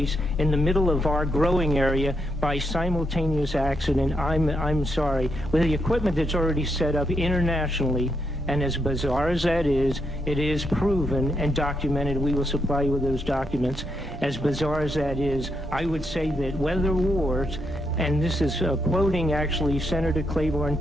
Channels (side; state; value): both; normal; correlation 0.80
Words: in the middle of our growing area by simultaneous accident, I'm sorry. With the equipment that's already set up internationally, and as bizarre as that is, it is proven and documented. We will supply you with those documents. As bizarre as that is, I would say that weather wars, and this is quoting actually Senator Claiborne